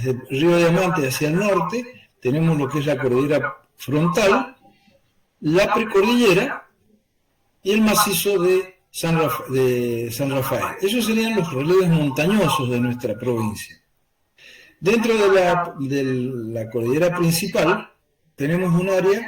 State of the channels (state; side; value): identical; both; correlation 1.00